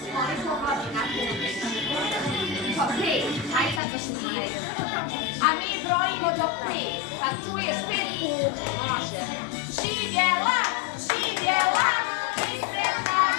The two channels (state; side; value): drops out; right; at 3.8 s